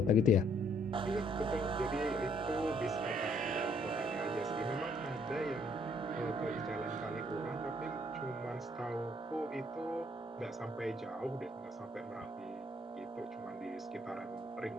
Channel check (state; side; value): normal; both; correlation 0.66